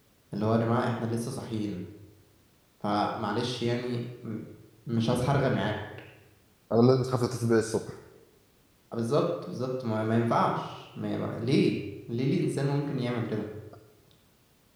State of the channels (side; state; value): both; identical; correlation 1.00